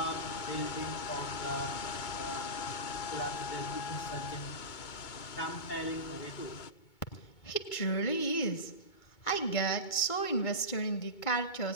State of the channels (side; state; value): right; late; 2.2 ms